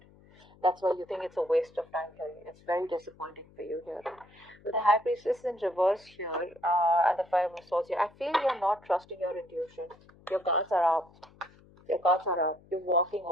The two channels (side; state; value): left; noise; hum, 26 dB below the sound